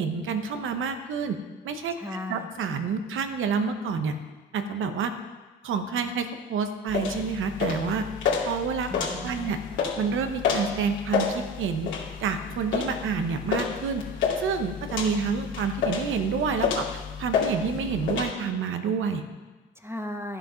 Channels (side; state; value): both; normal; correlation 0.30